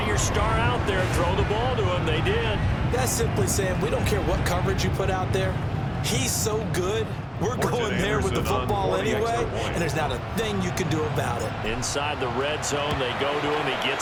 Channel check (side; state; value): both; identical; correlation 1.00